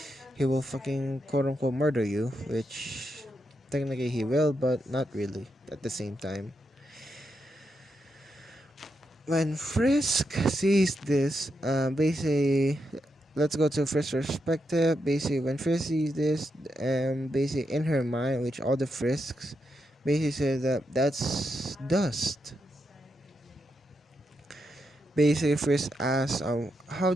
will fucking quote unquote murder you, which technically he will, but not really at the same time. When Frisk sees this, basically, let's go to Frisk's perspective. Basically, when Frisk sees this, basically in her mind, which all the Frisks basically say that that's Dust. Basically, Frisk asks, how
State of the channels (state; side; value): normal; both; correlation 0.84